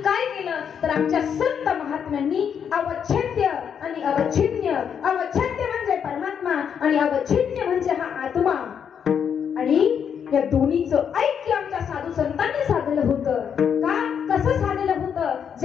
काय केलं? तर आमच्या संत महात्म्यांनी अवच्छेद्य आणि अवच्छिन्न, अवच्छेद्य म्हणजे परमात्मा आणि अवच्छिन्न म्हणजे हा आत्मा, आणि या दोन्हीचं ऐक्य आमच्या साधू संतांनी साधलं होतं. का? कसं साधलं होतं?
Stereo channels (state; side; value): quieter; right; 7.7 dB